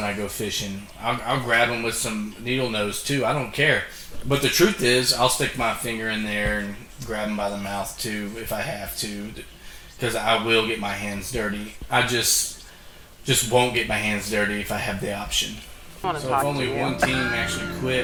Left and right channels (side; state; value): both; identical; correlation 1.00